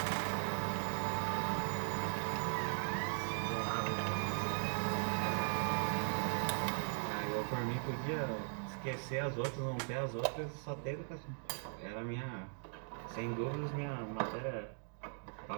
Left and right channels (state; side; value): silent; left; 52 dB below the other